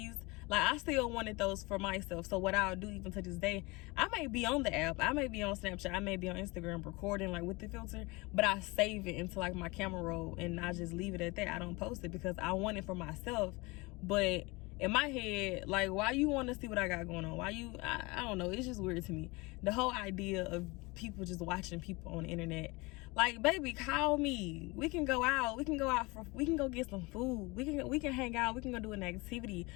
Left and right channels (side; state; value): right; quieter; 24.9 dB